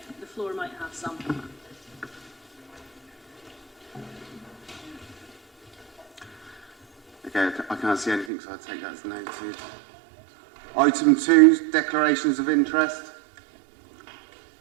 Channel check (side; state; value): left; drops out; at 8.3 s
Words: The floor might have some. Okay, I can't see anything, so I'll take that as noted. Item 2, declarations of interest.